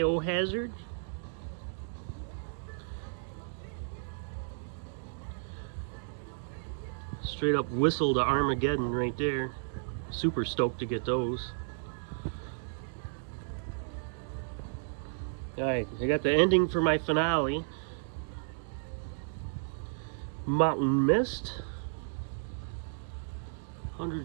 Straight up whistle to Armageddon right there. Super stoked to get those. Alright, I got the ending for my finale. Mountain Mist. 100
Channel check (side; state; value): left; silent; digital silence